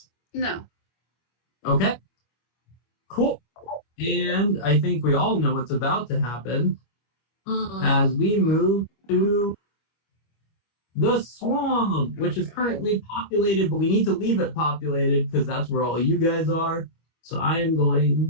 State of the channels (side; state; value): right; late; 25 ms